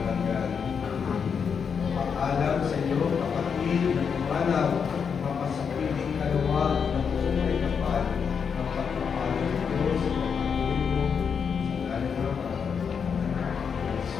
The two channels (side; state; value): right; quieter; 6.5 dB